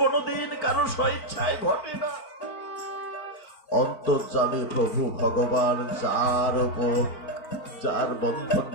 কারো স্বইচ্ছায় ঘটে না। অন্তর্যামী প্রভু ভগবান যার বন্ধন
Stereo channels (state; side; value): late; right; 4.5 ms